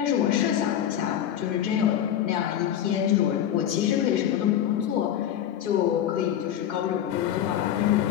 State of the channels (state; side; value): quieter; right; 10.6 dB